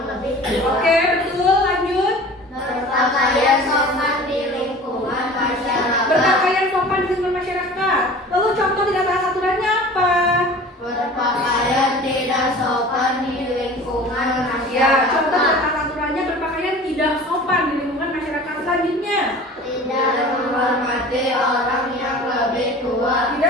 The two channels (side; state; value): both; normal; correlation 0.41